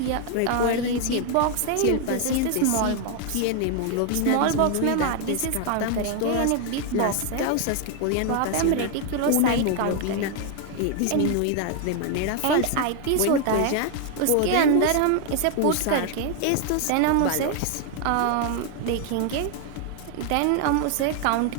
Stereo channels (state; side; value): different; both; correlation 0.00